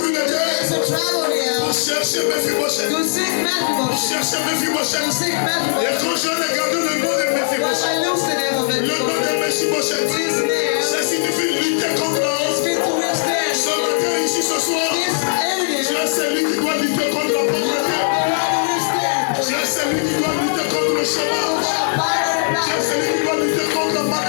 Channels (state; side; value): silent; right; digital silence